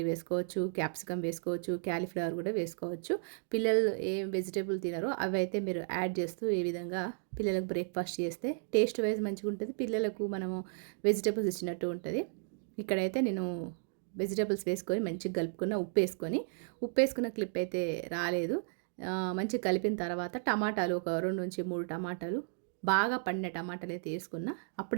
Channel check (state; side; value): silent; left; digital silence